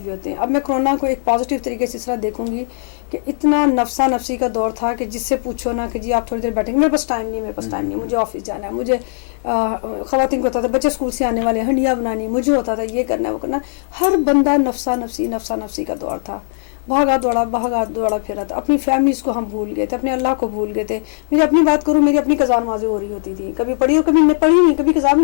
بھی ہوتے ہیں. اب میں کرونا کو ایک پازیٹیو طریقے سے اس طرح دیکھوں گی کہ اتنا نفسا نفسی کا دور تھا کہ جس سے پوچھو نا کہ جی آپ تھوڑی دیر بیٹھیں گے, میرے پاس ٹائم نہیں, مجھے آفس جانا ہے, مجھے خواتین کو ہوتا تھا بچے اسکول سے آنے والے ہیں, ہنڈیاں بنانی, مجھے ہوتا تھا یہ کرنا ہے وہ کرنا. ہر بندہ نفسا نفسی کا دور تھا, بھاگا دوڑا پھرا تھا. اپنی فیملیز کو ہم بھول گئے تھے, اپنے اللہ کو بھول گئے تھے. میری اپنی بات کروں, میری اپنی قضا نمازیں ہو رہی ہوتی تھی, کبھی پڑھی اور کبھی پڑھی نہیں, کبھی قضا بھی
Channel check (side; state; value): right; silent; digital silence